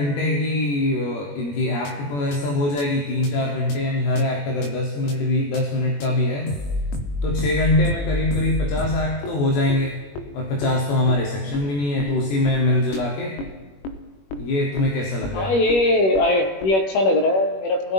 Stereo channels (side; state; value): right; late; 21 ms